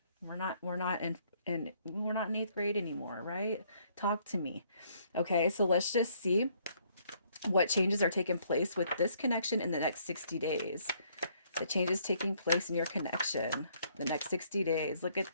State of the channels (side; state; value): both; inverted; correlation -0.66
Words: We're not in eighth grade anymore, right? Talk to me. Okay. So let's just see what changes are taking place with this connection in the next 60 days. The changes taking place in your connection the next 60 days. Look at